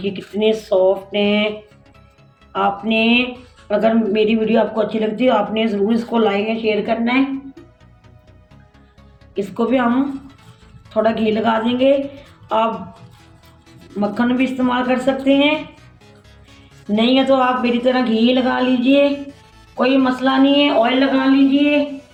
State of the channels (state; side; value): identical; both; correlation 1.00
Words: कितने सॉफ्ट हैं। आपने अगर मेरी वीडियो आपको अच्छी लगती है आपने ज़रूर इसको लाइक या शेयर करना है। इसको भी हम थोड़ा घी लगा देंगे। आप मक्खन भी इस्तेमाल कर सकते हैं, नहीं है तो आप मेरी तरह घी लगा लीजिए, कोई मसला नहीं है। ऑयल लगा लीजिए,